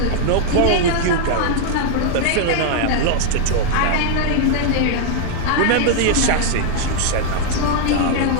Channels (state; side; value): different; both; correlation 0.00